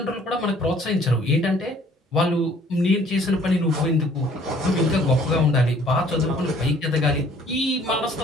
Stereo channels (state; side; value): normal; both; correlation 0.57